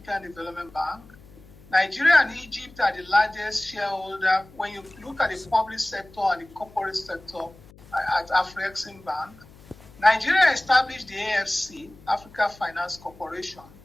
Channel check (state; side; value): noise; left; hum, 23 dB below the sound